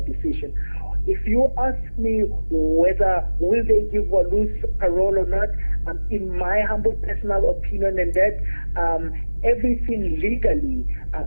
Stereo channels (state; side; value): inverted; both; correlation -1.00